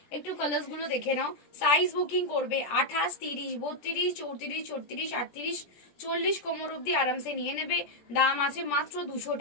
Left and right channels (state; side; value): late; right; 17 ms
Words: একটু কালার্স গুলো দেখে নাও। সাইজ বুকিং করবে 28, 30, 32, 34, 36, 38, 40 কোমর অব্দি আরামসে নিয়ে নেবে। দাম আছে মাত্র 200